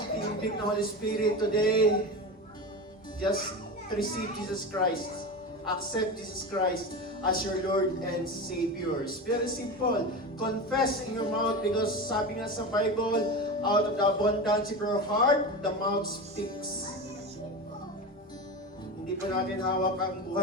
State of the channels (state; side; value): normal; both; correlation 0.24